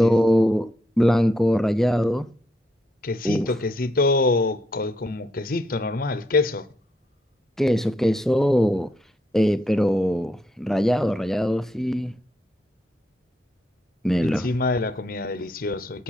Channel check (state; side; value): normal; both; correlation 0.77